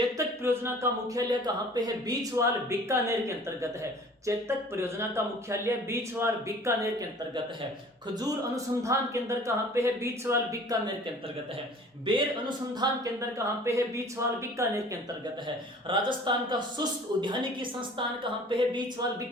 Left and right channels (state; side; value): normal; both; correlation 0.48